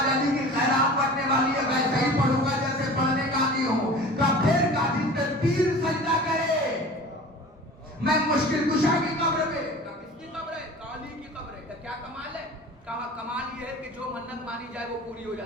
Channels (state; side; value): normal; both; correlation 0.40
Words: علی کی خیرات پڑھنے والی ہے, ویسے ہی پڑھوں گا جیسے پڑھنے کا عادی ہوں. کہا پھر کہا جس پہ پیر سجدہ کرے میں مشکل کشا کی قبر پہ. کہا کس کی قبر ہے؟ کہا علی کی قبر ہے. کہا کیا کمال ہے؟ کہا کمال یہ ہے کہ جو منت مانی جائے وہ پوری ہو